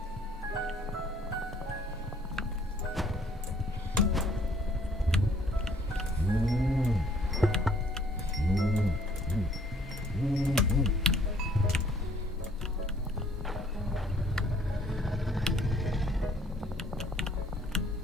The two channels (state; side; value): normal; both; correlation 0.60